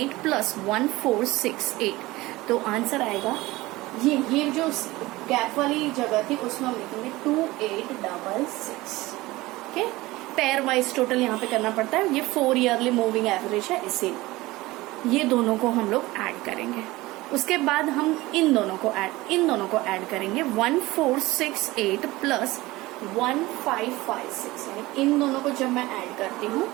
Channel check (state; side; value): quieter; left; 19.6 dB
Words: प्लस 1468, तो आंसर आएगा ये जो गैप वाली जगह थी उसमें हम लिखेंगे 2866। ओके, पेयर वाइज टोटल यहाँ पे करना पड़ता है, ये 4 ईयरली मूविंग एवरेज है, इसे ये दोनों को हम लोग ऐड करेंगे। उसके बाद हम इन दोनों को ऐड करेंगे 1468 प्लस 1556, यानी इन दोनों को जब मैं ऐड करती हूँ